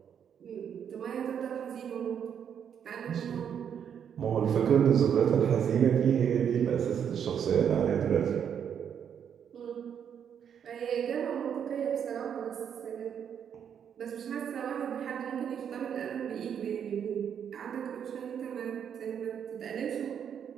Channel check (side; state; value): left; quieter; 8.3 dB